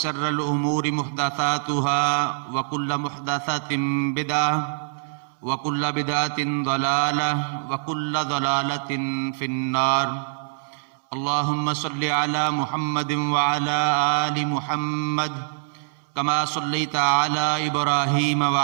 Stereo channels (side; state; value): left; silent; 63 dB below the other